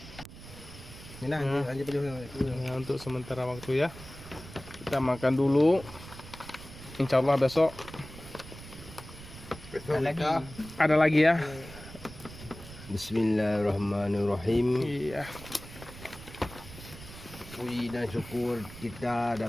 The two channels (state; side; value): noise; right; rumble, 15 dB below the sound